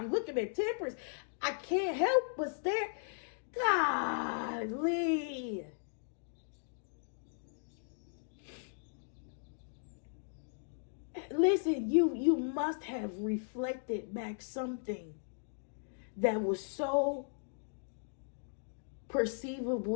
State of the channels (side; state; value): right; silent; digital silence